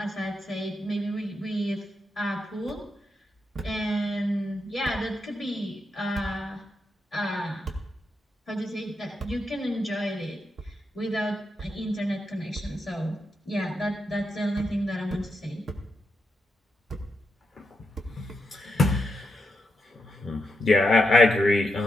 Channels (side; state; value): both; normal; correlation 0.84